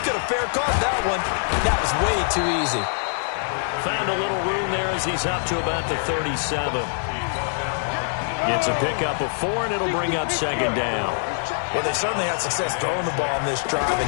have fair caught that one. That was way too easy. Found a little room there as he's up to about the 37. Gets a pickup of 4, and it'll bring up second down. Well, they certainly had success throwing the ball in this drive,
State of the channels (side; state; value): right; silent; digital silence